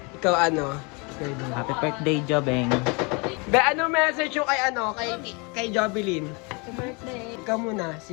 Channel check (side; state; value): right; quieter; 30.5 dB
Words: Ikaw ano? Happy birthday, Jobeng. Be, ano message yung kay ano? Kay Jovelyn? Happy birthday. Ikaw muna.